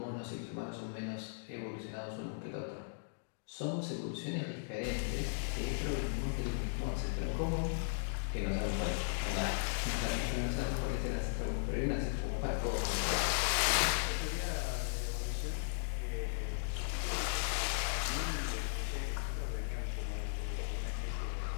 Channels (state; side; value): silent; right; digital silence